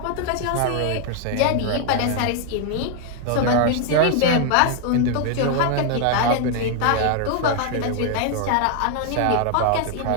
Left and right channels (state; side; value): different; both; correlation 0.00